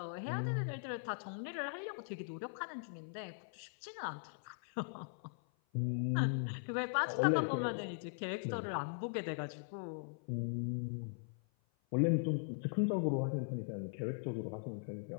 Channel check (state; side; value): silent; right; 51 dB below the other